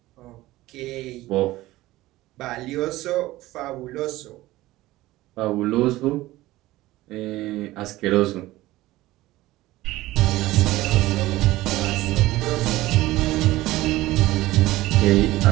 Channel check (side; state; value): left; quieter; 17.4 dB